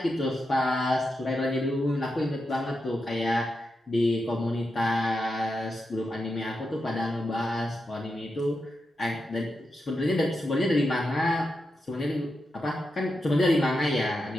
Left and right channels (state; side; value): normal; both; correlation 0.87